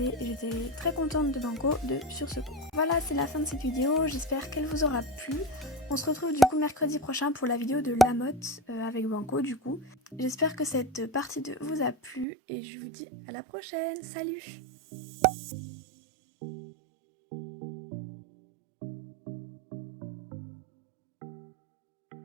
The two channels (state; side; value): drops out; left; at 12.2 s